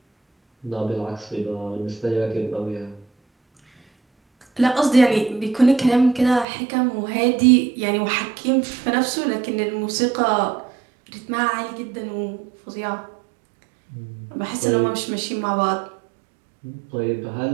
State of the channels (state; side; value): drops out; left; at 6.5 s